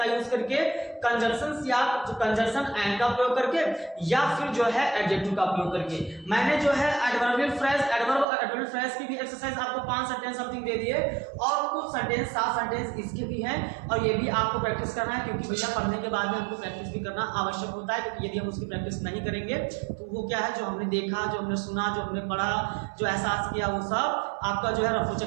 यूज करके? कंजंक्शन या कंजंक्शन एंड का प्रयोग करके, या फिर जो है एडजेक्टिव का प्रयोग करके। मैंने जो है एडवर्बियल फ्रेज, एडवर्ब और एडवर्बियल फ्रेज की भी एक्सरसाइज आपको 5 सेंटेंस समथिंग दे दिए, और कुछ सेंटेंस 7 सेंटेंस इसके भी हैं, और ये भी आपको प्रैक्टिस करना है, क्योंकि भैया पढ़ने के बाद में हमको प्रैक्टिस भी करना आवश्यक होता है। क्योंकि यदि हम उसकी प्रैक्टिस नहीं करेंगे तो वो क्या है, जो हमने देखा, जो हमने सुना, जो हमने पढ़ा, जो एहसास किया, वो सब आपका जो है रफू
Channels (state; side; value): drops out; left; at 8.2 s